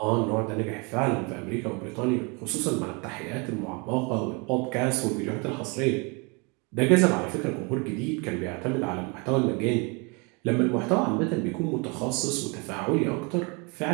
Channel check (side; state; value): left; quieter; 30.9 dB